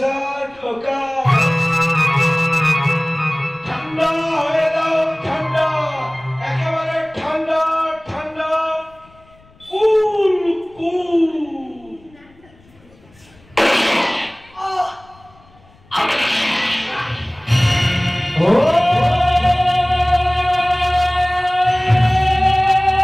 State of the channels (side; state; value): left; noise; rumble, 28 dB below the sound